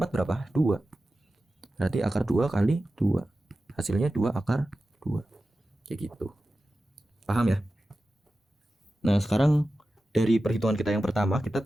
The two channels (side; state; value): both; normal; correlation 0.94